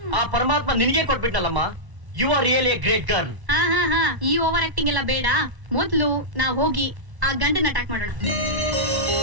ಆ ಪರಮಾತ್ಮ ನಿನಗೆ ಕೊಟ್ಬಿಟ್ನಲ್ಲಮ್ಮ. You are really a great girl. ಹಾ, ಈ ಓವರ್ ಆಕ್ಟಿಂಗ್ ಎಲ್ಲ ಬೇಡ. ಮೊದ್ಲು ನಾವ್ ಹೋಗಿ ಆ ಗಂಡನ ಅಟ್ಯಾಕ್ ಮಾಡೋಣ.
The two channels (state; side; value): late; left; 1.1 ms